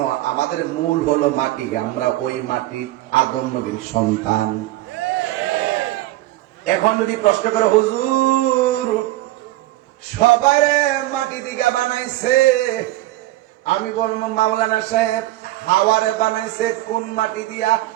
আমাদের মূল হলো মাটি। আমরা ওই মাটি আদম নবীর সন্তান। এখন যদি প্রশ্ন করে, হুজুর সবাই মাটি দিকে বানাইছে, আমি বলবো মাওলানা সাহেব হাওয়ারে বানাইছে কোন মাটি দিয়া?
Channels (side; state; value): left; quieter; 16.7 dB